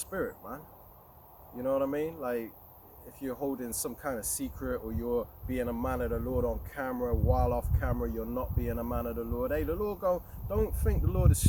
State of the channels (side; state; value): both; identical; correlation 1.00